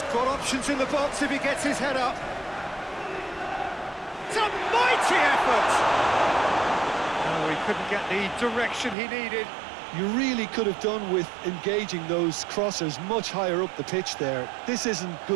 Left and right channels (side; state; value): left; drops out; at 9.0 s